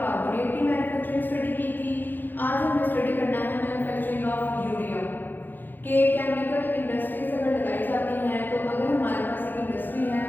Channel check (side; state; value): right; late; 0.090 ms